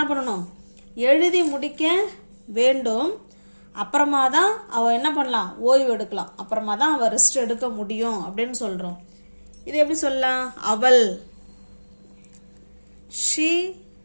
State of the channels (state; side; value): inverted; both; correlation -1.00